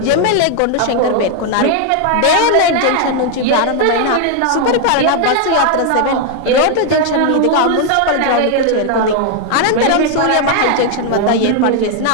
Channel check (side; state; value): both; different; correlation 0.01